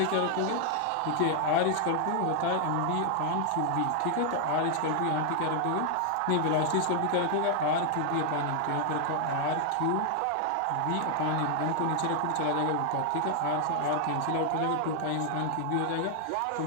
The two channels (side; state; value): both; different; correlation 0.00